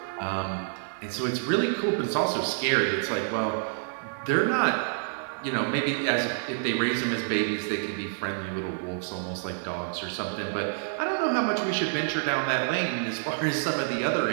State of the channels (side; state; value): left; silent; 59 dB below the other